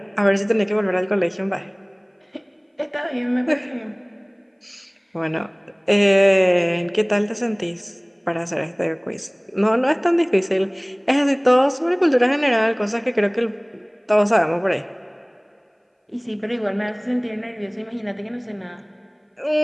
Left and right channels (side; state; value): both; identical; correlation 1.00